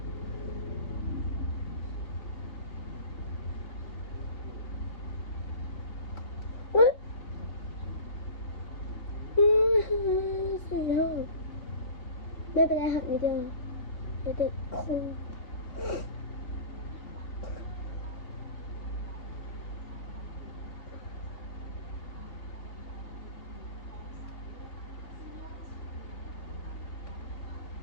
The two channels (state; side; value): late; right; 3.4 ms